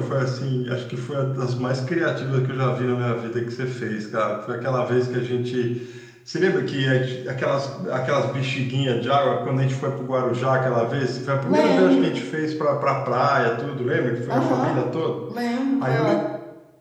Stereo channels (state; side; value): identical; both; correlation 1.00